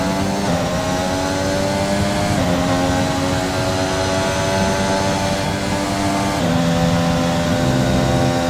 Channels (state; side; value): identical; both; correlation 1.00